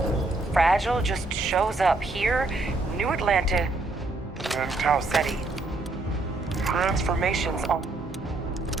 fragile, just shows up here, New Atlanta and Tau Ceti. Transformations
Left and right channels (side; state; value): left; quieter; 3.1 dB